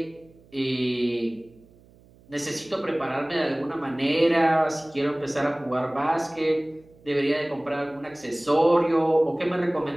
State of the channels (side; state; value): right; noise; hum, 27 dB below the sound